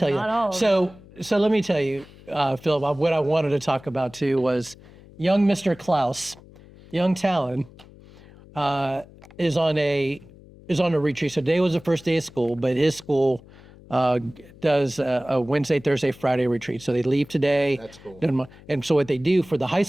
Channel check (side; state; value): left; noise; hum, 22 dB below the sound